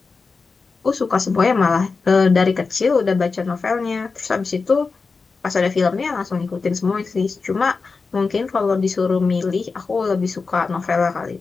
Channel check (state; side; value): quieter; right; 4.5 dB